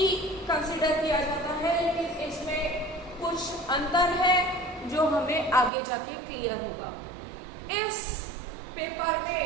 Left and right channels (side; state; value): left; drops out; at 5.7 s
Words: कंसिडर किया जाता है, लेकिन इसमें कुछ अंतर है जो हमें आगे जाके क्लियर होगा। इस पेपर